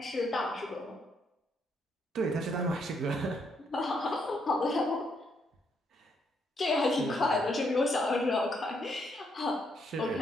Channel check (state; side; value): normal; both; correlation 0.74